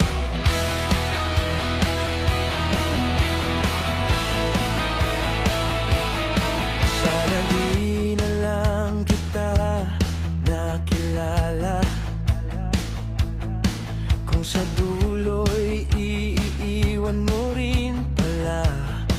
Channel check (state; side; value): identical; both; correlation 1.00